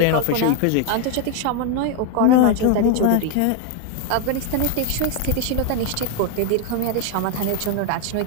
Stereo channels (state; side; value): different; both; correlation 0.01